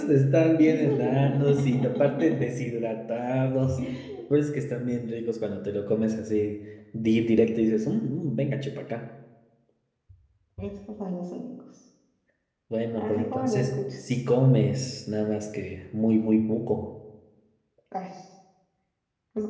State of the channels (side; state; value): both; identical; correlation 1.00